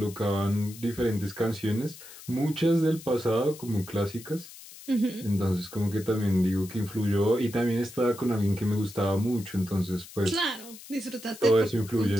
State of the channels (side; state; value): left; noise; hiss, 17 dB below the sound